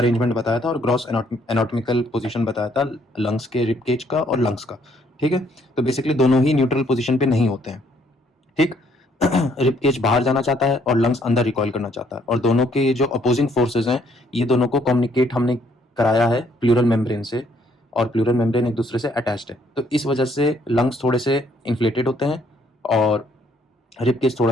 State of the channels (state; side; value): normal; both; correlation 0.67